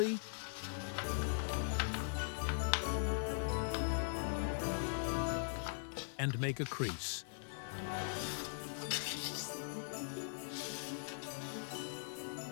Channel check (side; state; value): right; silent; digital silence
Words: and make a crease.